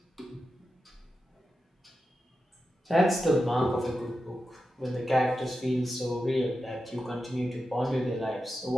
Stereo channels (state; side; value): normal; both; correlation 0.90